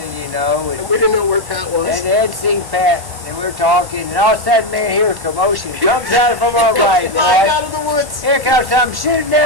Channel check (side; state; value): left; late; 1.1 ms